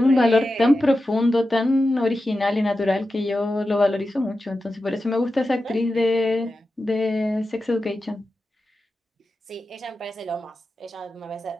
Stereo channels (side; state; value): both; normal; correlation 0.92